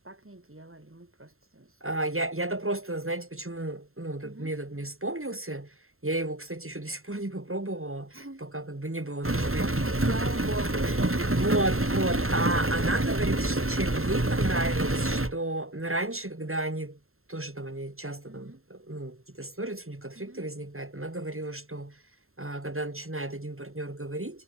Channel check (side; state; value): left; late; 0.61 ms